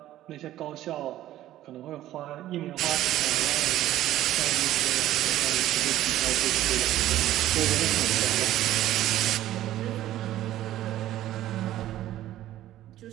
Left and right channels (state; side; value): quieter; left; 13.8 dB